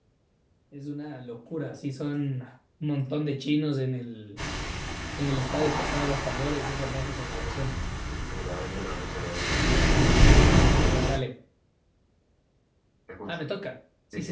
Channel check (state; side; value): identical; both; correlation 1.00